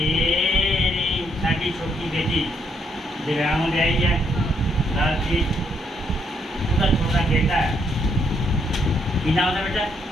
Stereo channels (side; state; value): both; normal; correlation 0.74